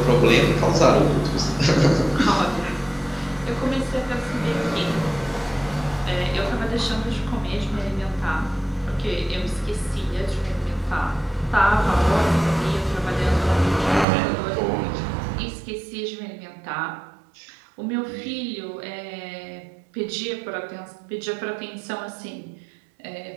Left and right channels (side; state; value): left; drops out; at 14.1 s